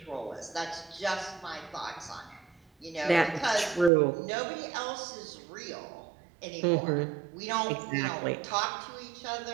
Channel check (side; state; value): left; drops out; at 3.9 s